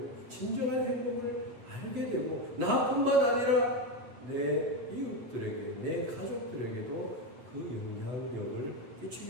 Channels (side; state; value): left; late; 8.3 ms